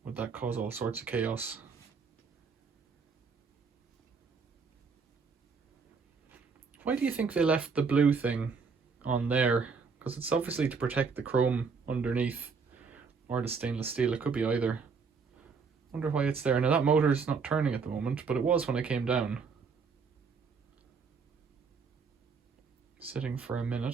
cause all sorts of chaos? Why do you think they left the blue thing on there? Because it's obviously to protect the chrome underneath, or the stainless steel. It could be either. Wonder why it's there. Now that motor's not turning at the moment, but it was when I came down. Sitting for a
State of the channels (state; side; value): quieter; left; 5.2 dB